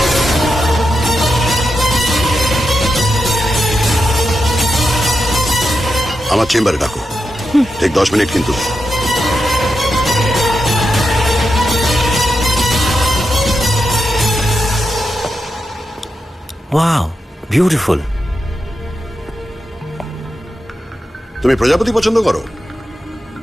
আমার চেম্বারে ডাকো, ঠিক 10 মিনিট কিন্তু। Wow, beautiful. তুমি প্রজাপতি পছন্দ করো?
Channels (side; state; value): both; normal; correlation 0.87